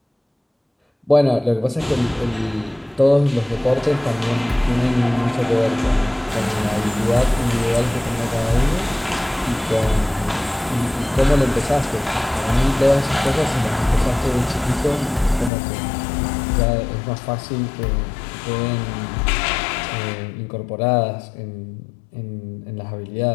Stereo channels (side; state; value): right; drops out; at 15.5 s